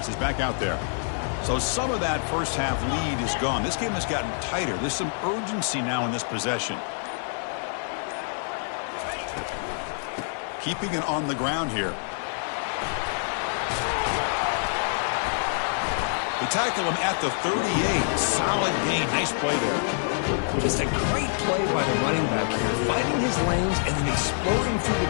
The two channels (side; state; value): right; silent; digital silence